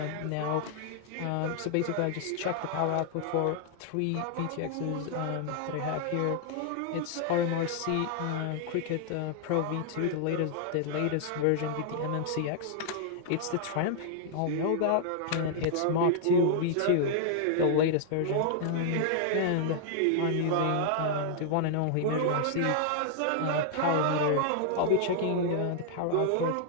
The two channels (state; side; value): different; both; correlation -0.01